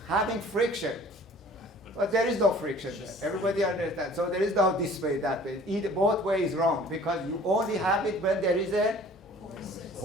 having friction, but there is no friction there. Everybody understands. So there is no this way, that way. Either both ways is wrong, because you only have it when there is a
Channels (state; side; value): normal; both; correlation 0.50